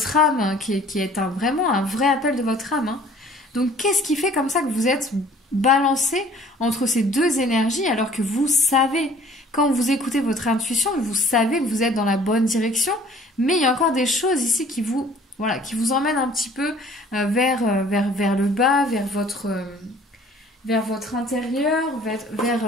âme, hein, qui est vraiment un vrai appel de votre âme, hein. Donc qu'est-ce qui fait comme ça que vous êtes balancé entre ces deux énergies alors que vous savez, quand vous écoutez votre intuition, vous savez que vous êtes dans la bonne direction, mais il y a encore des choses ici voilà, qui vous emmène un petit peu vers le bas, vers votre intérieur,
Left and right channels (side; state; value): both; normal; correlation 0.53